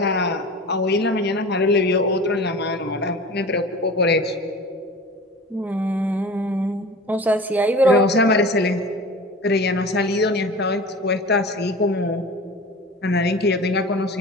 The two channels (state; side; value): normal; both; correlation 0.36